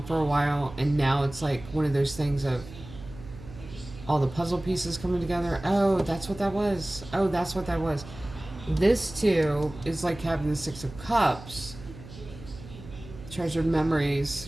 for a while, and now it's like one of those things of all the puzzle pieces coming together. Oh, that's what that was. Oh, that's what that was. This too is like having the 6 of Cups, treasured memories,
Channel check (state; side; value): noise; right; hum, 16 dB below the sound